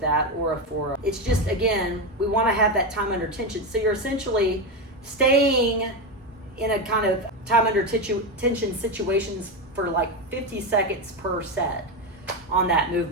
that or a 4. It's just, again, we want to have that time under tension. So you're essentially staying in a kind of time under tension situations for like 50 seconds per set on that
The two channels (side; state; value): both; normal; correlation 0.13